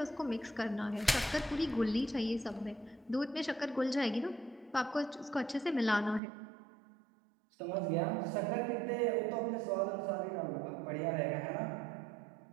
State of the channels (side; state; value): left; drops out; at 6.2 s